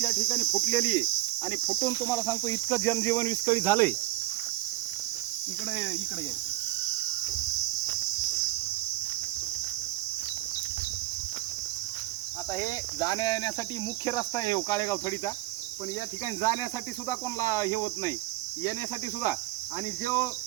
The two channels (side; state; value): left; quieter; 17.7 dB